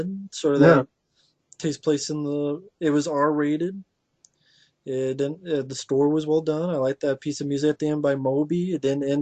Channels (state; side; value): identical; both; correlation 1.00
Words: sort of Yeah. that takes place in the. It was R rated. It didn't. The score was well done. I liked that piece of music at the end by Moby. It didn't